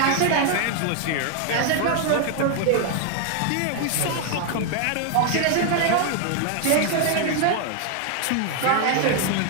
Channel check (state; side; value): different; both; correlation 0.00